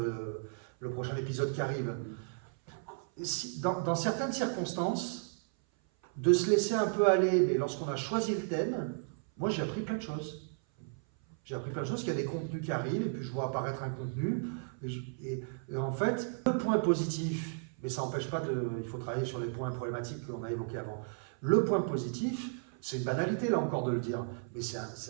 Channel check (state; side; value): silent; left; 55 dB below the other